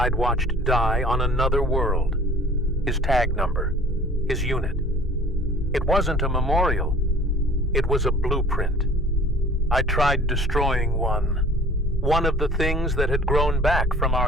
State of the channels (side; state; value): both; normal; correlation 0.49